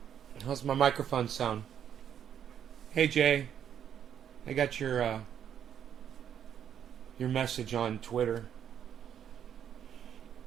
How's my microphone sound? Hey, Jay. I got your message on Twitter.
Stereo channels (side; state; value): left; quieter; 9.1 dB